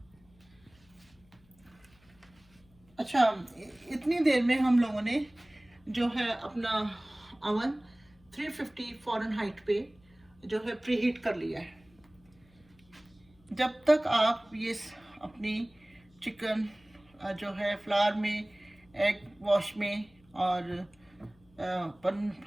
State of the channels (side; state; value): left; noise; hum, 30 dB below the sound